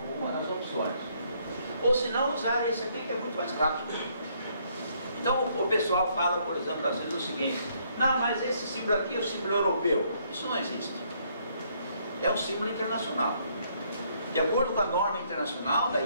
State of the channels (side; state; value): both; inverted; correlation -0.68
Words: com uma das opções. Ou se não, usar esse aqui que é muito mais rápido. Então o pessoal fala, por exemplo, às vezes o seguinte: não, mas esse símbolo aqui é o símbolo europeu. Isso não existe. É um símbolo internacional. De acordo com a norma internacional da